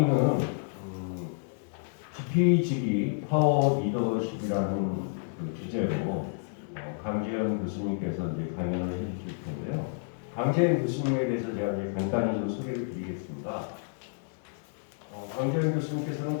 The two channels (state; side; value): silent; right; digital silence